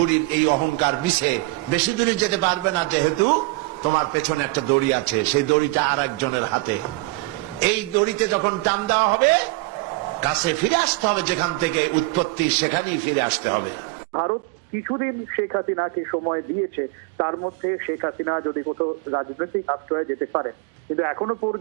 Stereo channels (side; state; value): left; drops out; at 12.7 s